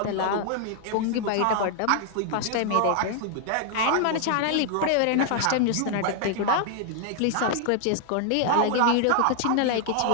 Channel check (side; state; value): both; different; correlation 0.00